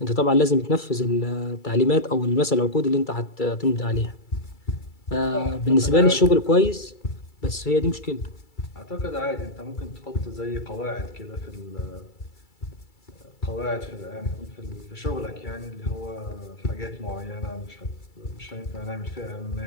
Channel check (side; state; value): right; late; 2.3 ms